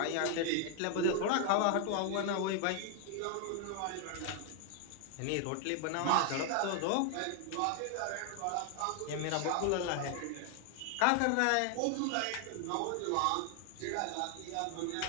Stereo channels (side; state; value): both; different; correlation 0.00